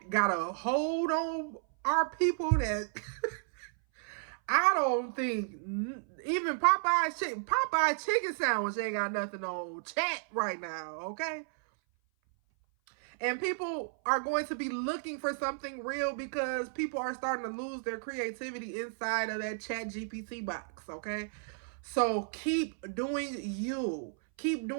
got a hold on our people that I don't think even Popeye's chicken sandwich ain't got nothing on chat right now, okay? And people are going to be looking for something real because people are starting to lose their creativity inside of that chat GPT box, okay? So keep doing you. Keep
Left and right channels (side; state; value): left; silent; 56 dB below the other